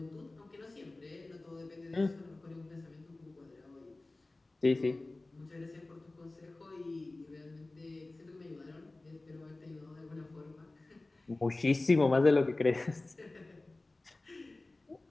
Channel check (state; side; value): quieter; right; 3.0 dB